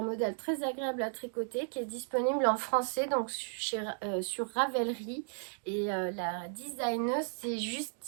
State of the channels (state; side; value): silent; left; digital silence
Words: modèle très agréable à tricoter qui est disponible en français donc sur Ravelry. Et la designeuse c'est